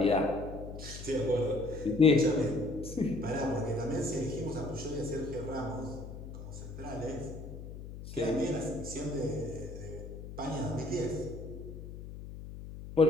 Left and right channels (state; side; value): noise; left; hum, 11 dB below the sound